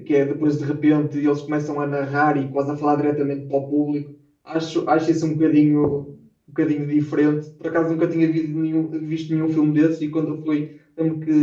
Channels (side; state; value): both; identical; correlation 1.00